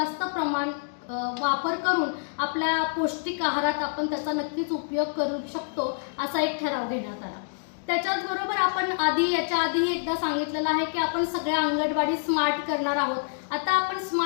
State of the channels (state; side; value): silent; right; digital silence